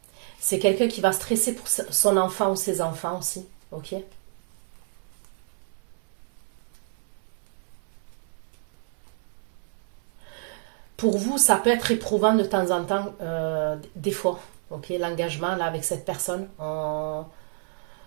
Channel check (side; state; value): left; silent; 59 dB below the other